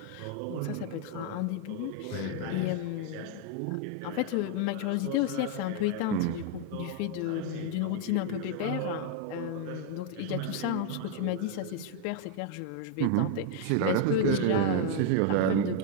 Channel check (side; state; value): both; different; correlation 0.00